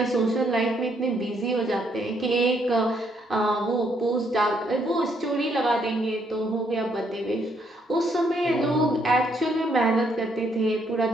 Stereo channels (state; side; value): normal; both; correlation 0.72